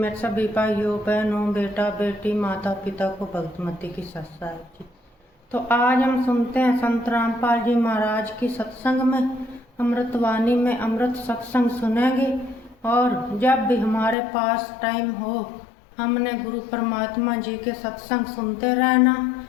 सभी भाइयों बहनों बेटा बेटी माता पिता को भक्तमती की सत साहब जी। तो आज हम सुनते हैं संत रामपाल जी महाराज की सत्संग में अमृतवाणी में अमृत सत्संग सुनेंगे। और जब भी हमारे पास टाइम हो हमने गुरु परमात्मा जी के सत्संग सुनते रहना।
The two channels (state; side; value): drops out; right; at 14.2 s